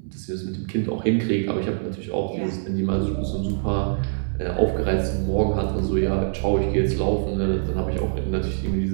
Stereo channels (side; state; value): left; silent; 63 dB below the other